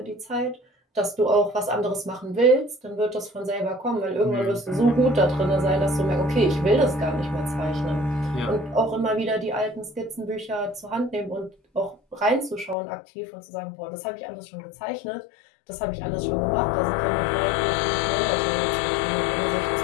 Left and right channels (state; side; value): drops out; right; at 12.8 s